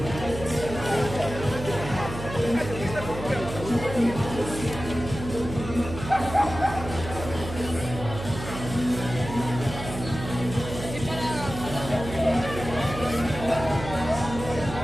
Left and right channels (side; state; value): right; noise; hum, 9 dB below the sound